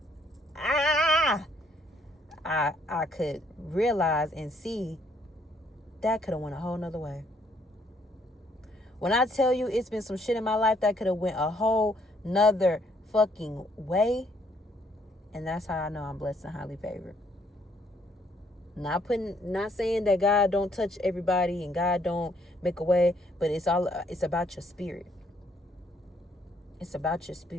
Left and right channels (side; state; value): both; normal; correlation 0.68